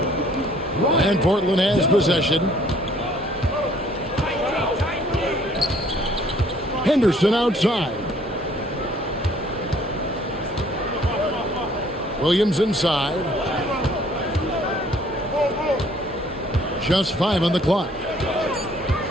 And Portland has possession. Henderson outside. Williams inside. Just 5 on the clock.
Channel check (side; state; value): both; normal; correlation 0.59